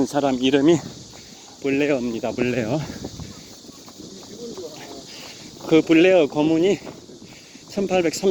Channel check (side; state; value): both; identical; correlation 1.00